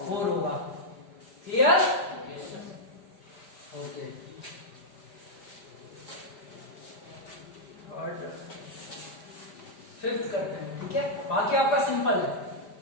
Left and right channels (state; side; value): late; right; 5.0 ms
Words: 4 होगा। क्लियर? ओके। और फिफ्थ करते हैं, ठीक है। बाकी आपका सिंपल है,